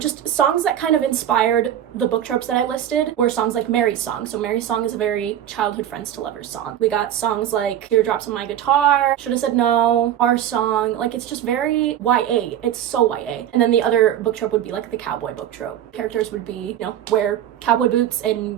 songs that kind of inspired the book tropes that I listed were songs like Mary's Song. So Mary's Song is a very childhood friends to lovers song. We got songs like Teardrops on My Guitar, Should Have Said No, Our Song. Like, it's just very YA. It's so YA. And then the other book trope would be like the cowboy book trope. Characters would be, wear cowboy boots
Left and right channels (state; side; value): quieter; left; 10.7 dB